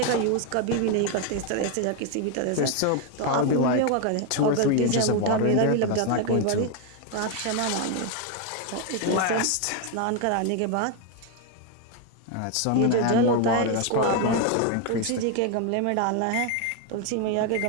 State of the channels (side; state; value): both; different; correlation 0.01